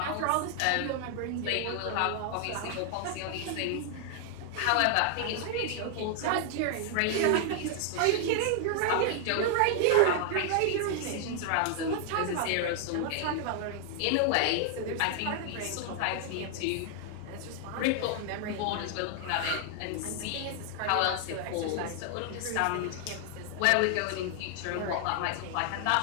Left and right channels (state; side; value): different; both; correlation 0.00